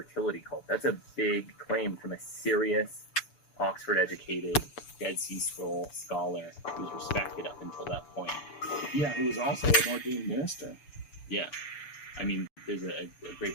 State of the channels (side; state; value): right; late; 6.9 ms